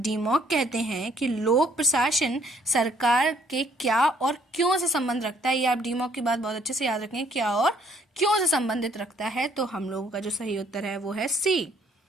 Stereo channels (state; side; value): normal; both; correlation 0.64